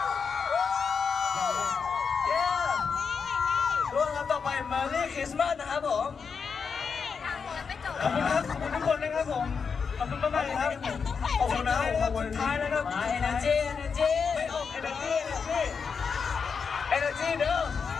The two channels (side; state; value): right; quieter; 5.8 dB